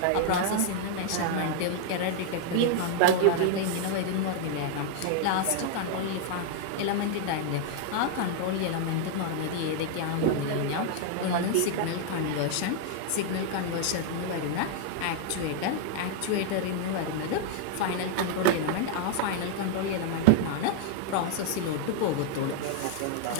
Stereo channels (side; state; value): both; different; correlation 0.00